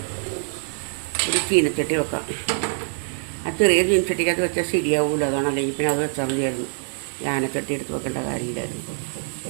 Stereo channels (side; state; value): left; silent; digital silence